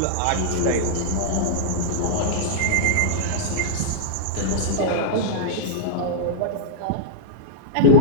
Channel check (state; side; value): different; both; correlation -0.02